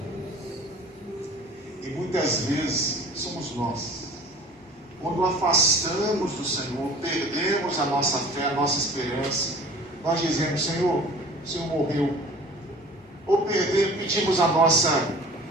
E muitas vezes somos nós, quando afastamos do Senhor, perdemos a nossa fé, a nossa esperança, nós dizemos: Senhor, o Senhor morreu. Ou pedimos a nossa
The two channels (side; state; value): both; normal; correlation 0.45